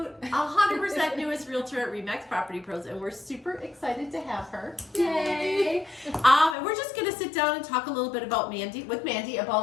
100% newest realtor at Remax Property Pros, and we're super excited to have her. Yay! And we're just going to sit down and talk a little bit about Mandy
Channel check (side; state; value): right; drops out; at 6.6 s